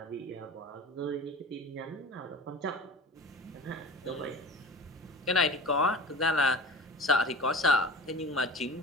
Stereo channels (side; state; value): both; normal; correlation 0.37